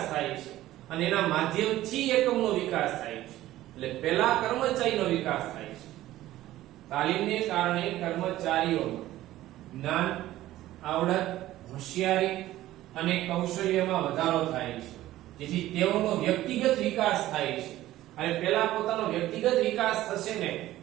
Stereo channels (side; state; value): left; quieter; 15.0 dB